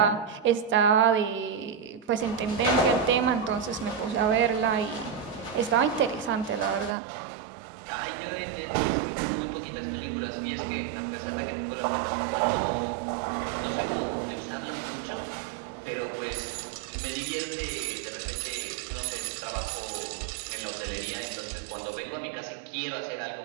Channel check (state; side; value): drops out; left; at 7.0 s